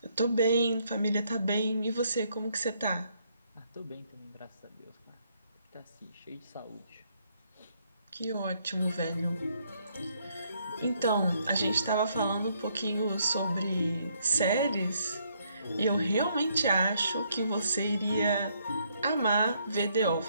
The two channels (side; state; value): both; inverted; correlation -0.71